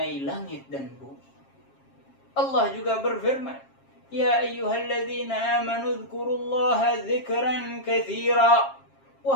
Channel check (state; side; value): late; right; 7.4 ms